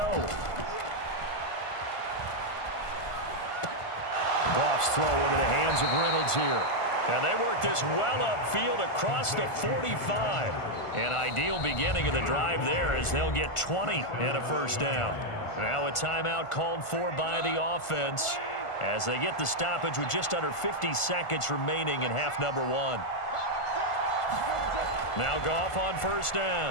Goff's throw into the hands of Reynolds here. And they work this well upfield across the 45. An ideal beginning of the drive there as they'll get 20 and a 1st down. Now a timeout called for by the offense as they get the stoppage with just under 50 seconds remaining in half number 1. Now Goff on 1st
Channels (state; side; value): late; right; 1.5 ms